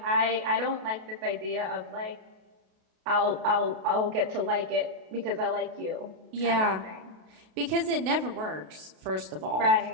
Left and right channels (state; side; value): late; left; 32 ms